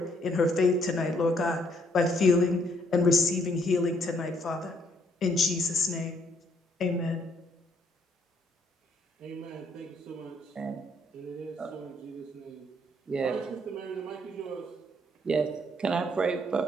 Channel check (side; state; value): both; normal; correlation 0.68